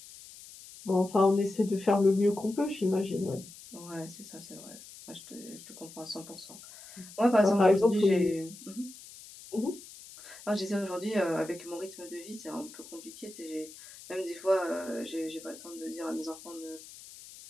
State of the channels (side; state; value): left; noise; hiss, 17 dB below the sound